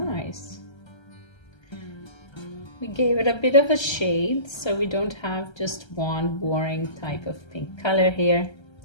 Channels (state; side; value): late; right; 1.3 ms